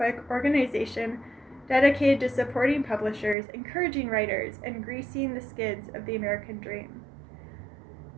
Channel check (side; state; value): left; drops out; at 3.4 s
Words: organization dedicated to supporting publishers, encouraging writers, and greasing the skids of the American dream.